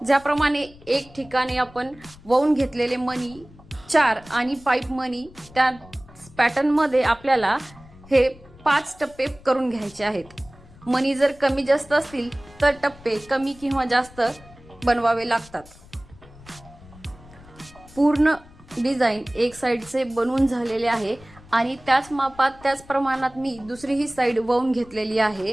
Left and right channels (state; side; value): noise; left; rumble, 22 dB below the sound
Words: ज्याप्रमाणे एक ठिकाणी आपण वळून घेतलेले मनी 4 आणि पाईप मनी त्या पॅटर्न मध्ये आपल्याला हे 5 टप्पे करून घ्यायचे आहेत। मनी जर कमी जास्त असतील तर टप्पे कमी किंवा जास्त बनवावे लागतात। पूर्ण डिझाइन एक साइडचे बनवून झालेले आहे आणि त्याच मापात त्याच प्रमाणात मी दुसरीही साइड वळून घेतलेली आहे।